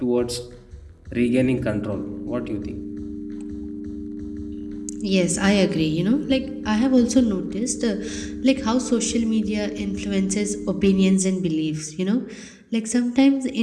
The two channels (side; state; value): both; identical; correlation 1.00